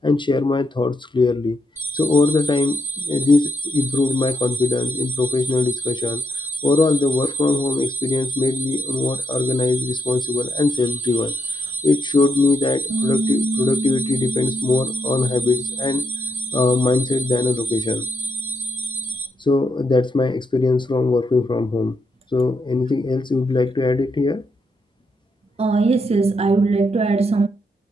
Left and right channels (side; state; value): both; normal; correlation 0.79